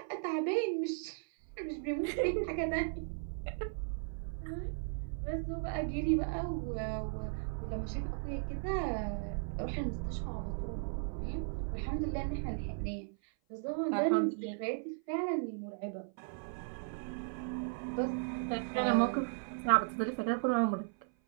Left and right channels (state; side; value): silent; left; 54 dB below the other